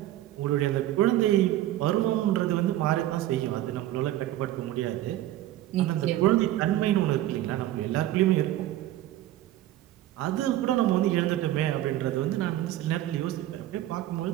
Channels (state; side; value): quieter; left; 14.1 dB